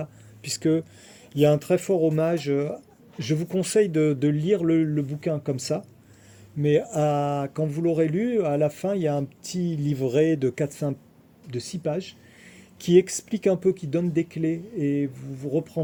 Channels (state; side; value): identical; both; correlation 1.00